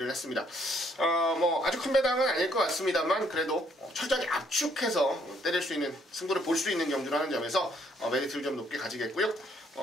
했습니다. 뭐 아주 큰 배당은 아닐 것 같습니다만 그래도 철저하게 압축해서 때릴 수 있는 승부를 볼 수 있는 경주라는 점에서 메리트를 좀 높게 가지겠고요.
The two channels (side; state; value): both; normal; correlation 0.68